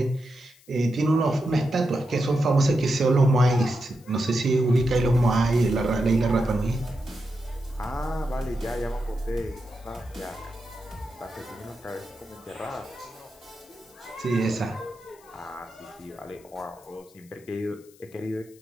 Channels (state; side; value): noise; left; hiss, 27 dB below the sound